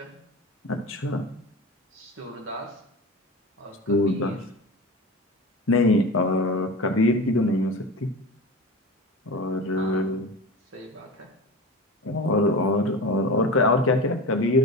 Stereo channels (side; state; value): both; normal; correlation 0.30